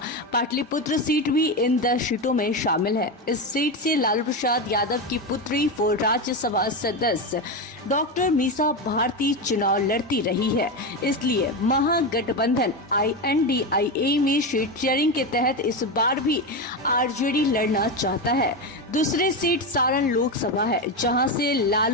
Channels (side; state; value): both; normal; correlation 0.15